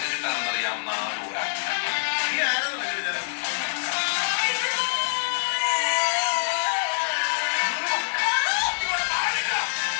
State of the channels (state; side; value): silent; right; digital silence